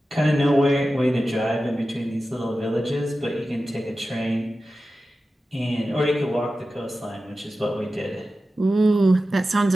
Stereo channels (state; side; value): normal; both; correlation 0.94